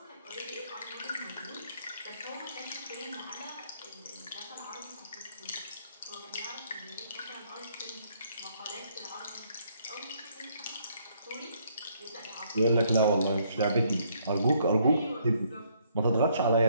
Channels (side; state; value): both; inverted; correlation -0.68